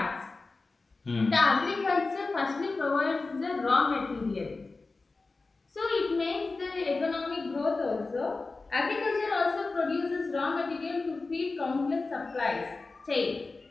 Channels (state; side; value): quieter; right; 3.7 dB